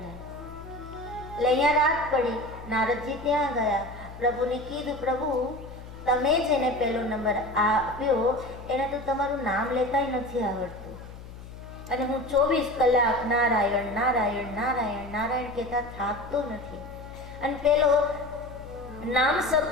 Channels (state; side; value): noise; left; hum, 14 dB below the sound